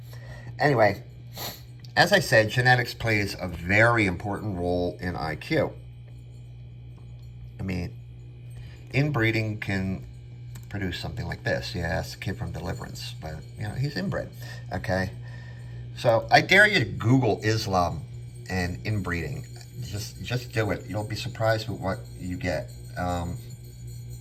Anyway, as I said, genetics plays a very important role in IQ. I mean, inbreeding can produce something like this. Yeah, that's the kid from Deliverance, but, he's inbred, okay? So I dare you to Google Islam and inbreeding. Just do it. You'll be surprised with what you get.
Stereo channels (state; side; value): identical; both; correlation 1.00